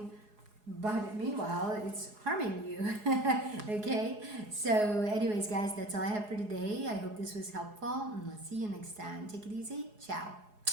but meanwhile, it's harming you. Okay, so anyways, guys, that's all I have for today. I hope this was helpful, and I'll see you next time. Take it easy. Ciao.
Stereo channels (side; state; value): left; late; 4.8 ms